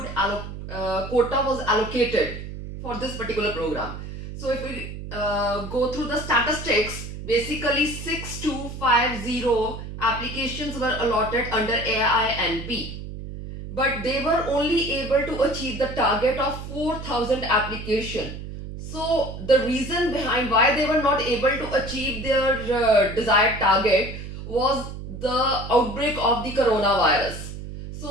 quota was allocated for this particular program. So if we go through the statistics, basically 6250 applications were allotted under AINP, but they were only able to achieve the target of 4000 application. So the reason behind why they were not able to achieve their desired target was the outbreak of the coronavirus.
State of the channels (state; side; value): noise; right; hum, 9 dB below the sound